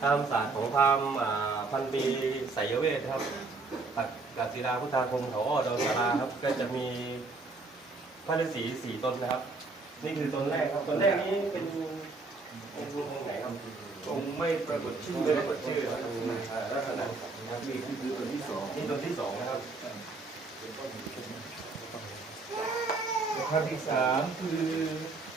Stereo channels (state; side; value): quieter; left; 3.8 dB